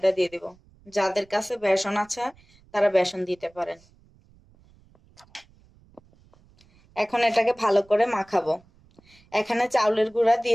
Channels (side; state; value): right; noise; rumble, 30 dB below the sound